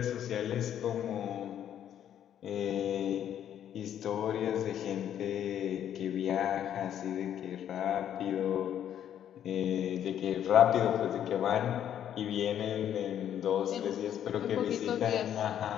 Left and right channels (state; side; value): quieter; right; 10.1 dB